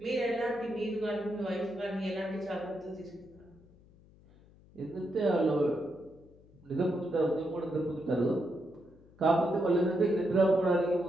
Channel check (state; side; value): noise; left; hum, 26 dB below the sound